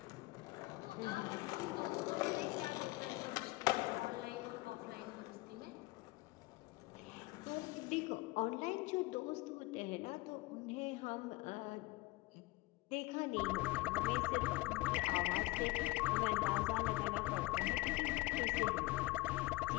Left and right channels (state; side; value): quieter; right; 21.2 dB